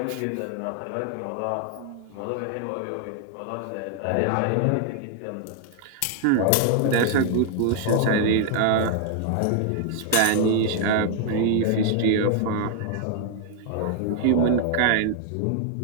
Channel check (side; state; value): both; different; correlation 0.00